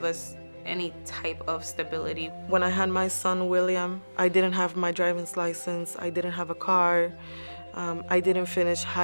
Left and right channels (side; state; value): both; inverted; correlation -1.00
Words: us any type of stability. When I had my son, William, I didn't have my driver's license. I didn't have a car. I didn't finish